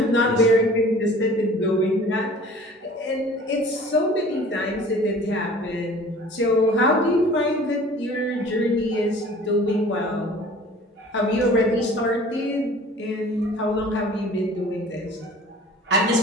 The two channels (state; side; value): normal; both; correlation 0.46